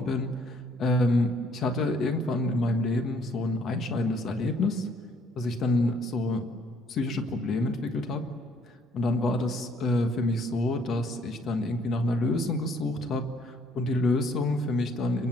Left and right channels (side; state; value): both; normal; correlation 0.64